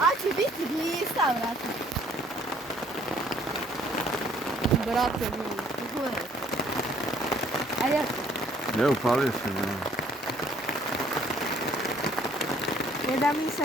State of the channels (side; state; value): both; normal; correlation 0.61